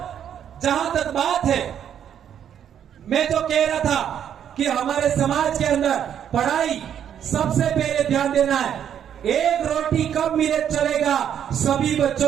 जहां तक बात है, मैं जो कह रहा था कि हमारे समाज के अंदर पढ़ाई सबसे पहले ध्यान देना है। एक रोटी कम मिले चलेगा, सभी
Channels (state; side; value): quieter; left; 9.2 dB